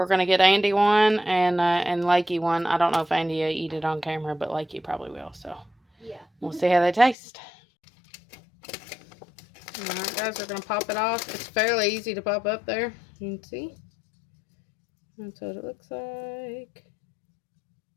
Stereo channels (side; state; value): right; drops out; at 7.2 s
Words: gonna get Andy one and Lakey one. I don't know if Andy will eat it on camera, but Lakey probably will. So yeah, we'll see how they taste. All right, guys, we're gonna pop it off. It's fairly easy to pop up there. You can see. That's what it looks like.